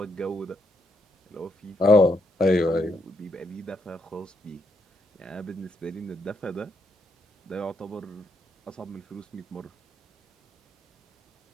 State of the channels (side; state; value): both; normal; correlation 0.78